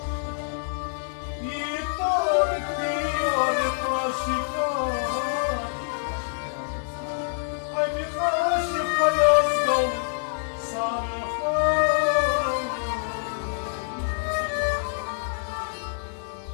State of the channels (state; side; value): silent; right; digital silence